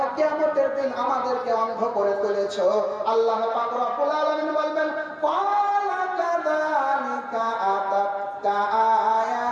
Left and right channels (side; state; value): both; identical; correlation 1.00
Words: কিয়ামতের দিন আমাদেরকে অন্ধ করে তুলেছো? আল্লাহ পাক রব্বুল আলামিন বলবেন, ক্বালা কাযালিকা আতাতকা